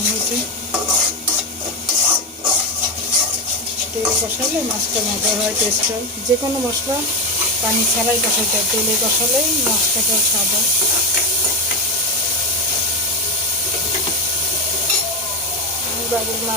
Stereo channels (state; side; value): normal; both; correlation 0.12